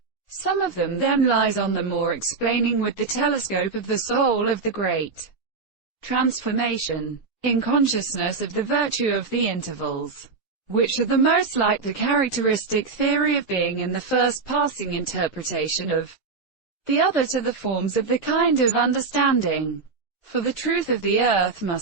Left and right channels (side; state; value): left; quieter; 4.5 dB